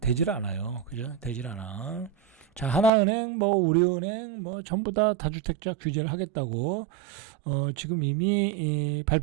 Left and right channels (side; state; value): left; drops out; at 2.9 s